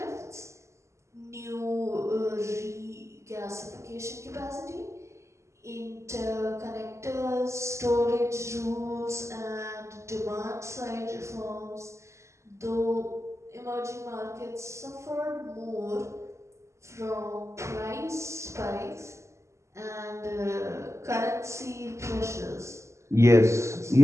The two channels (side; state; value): left; late; 0.14 ms